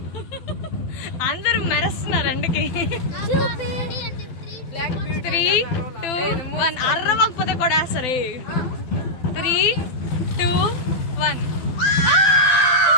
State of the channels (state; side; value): late; right; 12 ms